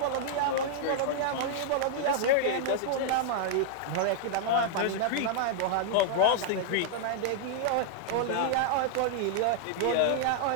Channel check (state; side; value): different; both; correlation -0.01